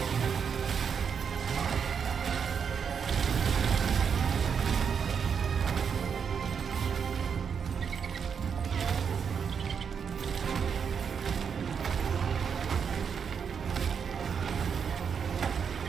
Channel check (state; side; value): quieter; left; 6.8 dB